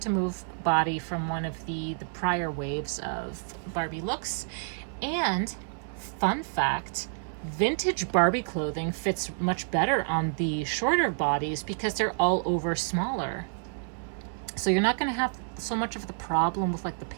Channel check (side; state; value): left; silent; 59 dB below the other